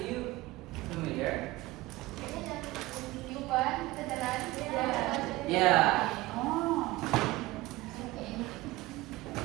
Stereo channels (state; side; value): quieter; left; 19.4 dB